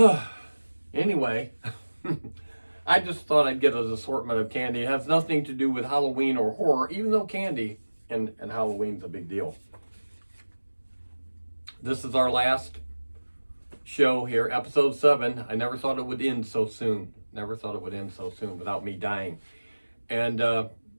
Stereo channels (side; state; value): both; inverted; correlation -1.00